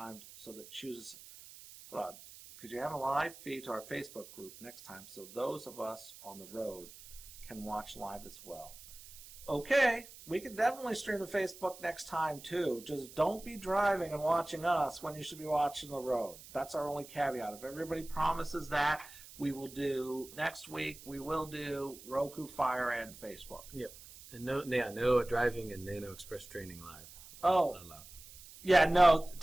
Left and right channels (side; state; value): right; noise; hiss, 17 dB below the sound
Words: so that chooses. Hold on. Could you have a live feed to our Facebook group next time, so those of us on the road can watch live as well? Okay, we can definitely stream to Facebook next time too. Just don't be driving and watching us when you should be watching the road. That's our only caveat. If everybody promises that, we will do next week. We will do Roku, Fire, and Facebook. Yep. And no driving and Nano Express training live. Oh, yeah, no,